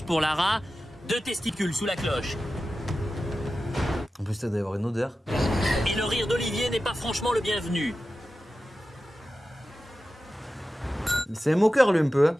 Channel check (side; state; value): both; normal; correlation 0.93